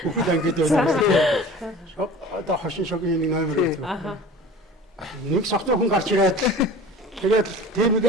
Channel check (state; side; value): normal; both; correlation 0.40